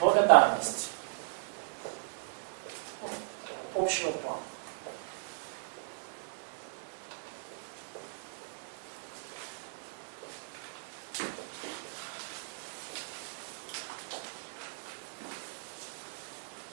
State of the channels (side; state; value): left; silent; digital silence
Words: Ну, такого общего плана.